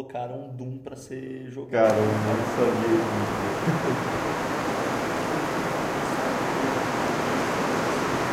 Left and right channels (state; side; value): identical; both; correlation 1.00